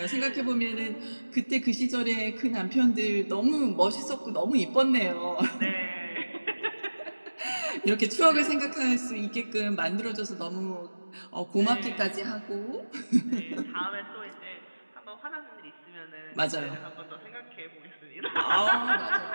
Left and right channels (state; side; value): inverted; both; correlation -1.00